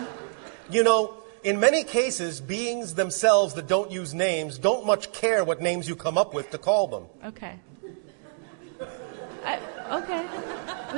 In many cases, beings themselves that don't use names don't much care what names you come up with to call them. Okay. Okay.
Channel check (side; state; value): left; silent; digital silence